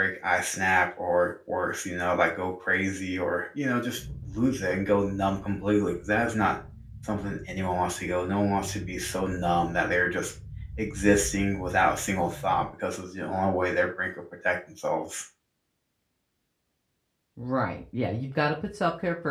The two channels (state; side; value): identical; both; correlation 1.00